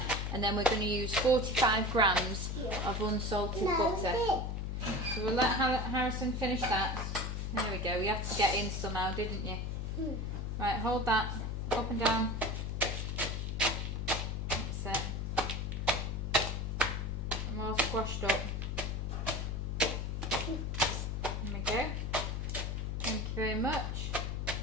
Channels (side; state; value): left; noise; hum, 2 dB below the sound